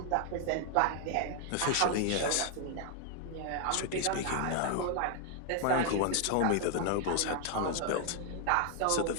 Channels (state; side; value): different; both; correlation 0.00